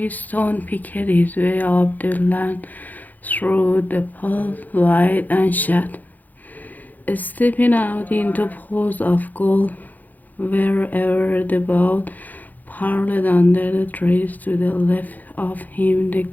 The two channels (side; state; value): right; late; 0.083 ms